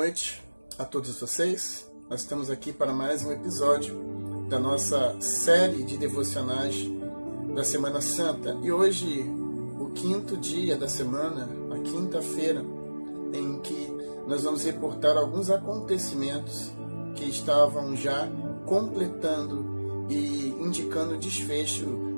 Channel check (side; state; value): both; inverted; correlation -1.00